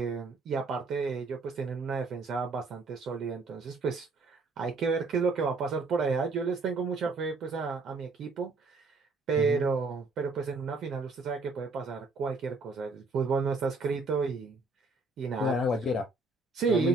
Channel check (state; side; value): quieter; left; 3.6 dB